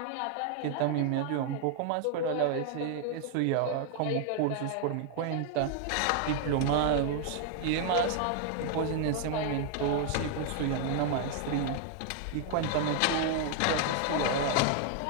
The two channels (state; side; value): different; both; correlation 0.00